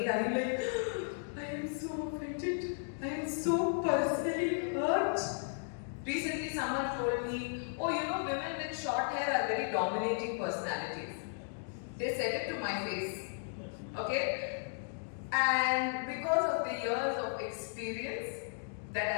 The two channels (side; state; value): right; silent; digital silence